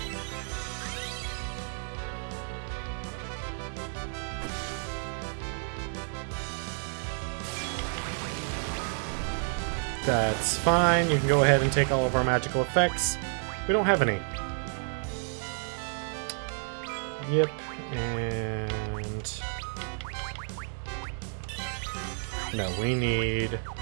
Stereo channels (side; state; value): left; silent; 57 dB below the other